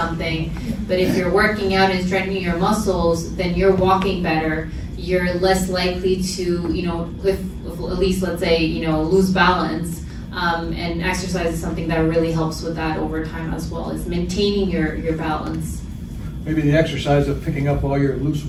But if you're working out and strengthening your muscles, then you're walking better. You're less likely to, you know, at least let's say, you know, lose balance. And exercise is something that really helps with that over time as well. It's maintaining your balance. Maybe the exercise of picking up all your loose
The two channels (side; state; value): both; identical; correlation 1.00